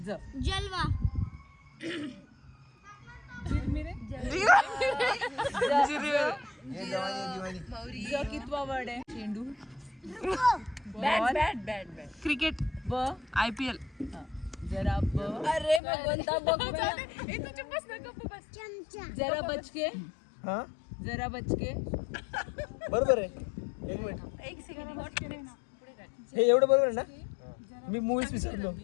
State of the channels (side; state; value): right; drops out; at 15.8 s